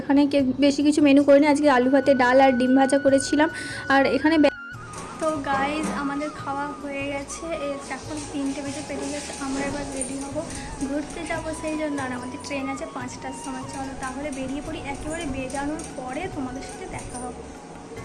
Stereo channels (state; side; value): identical; both; correlation 1.00